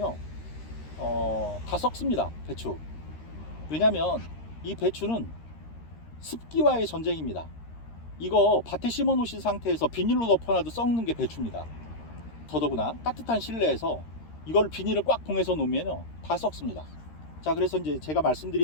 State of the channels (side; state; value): right; late; 13 ms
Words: 다 썩습니다, 배추. 왜냐면 이 배추는 습기와의 전쟁입니다. 이거 밭에 심어 놓으신 상태에서 비닐로 덮어놔도 썩는 게 배추입니다. 더더구나 따뜻한 실내에서 이걸 비닐을 꽉 봉해서 놓으면요 다 썩습니다. 자, 그래서 이제 제가